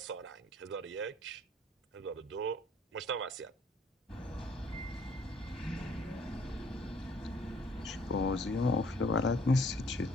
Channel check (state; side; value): normal; both; correlation 0.59